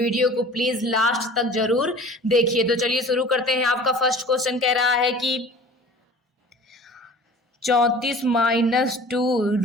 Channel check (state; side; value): normal; both; correlation 0.44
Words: को प्लीज़ लास्ट तक जरूर देखिए। तो चलिए शुरू करते हैं। आपका फर्स्ट क्वेश्चन कह रहा है कि 34 माइनस 2